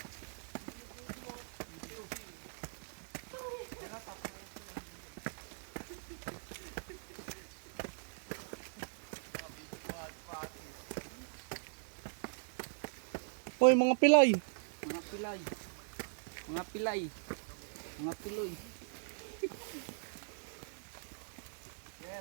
Hoy, mga pilay. Mga pilay. Mga pilay. Mga piloy.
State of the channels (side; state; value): left; silent; 51 dB below the other